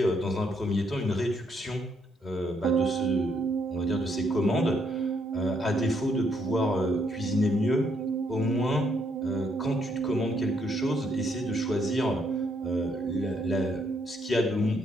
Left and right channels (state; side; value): normal; both; correlation 0.73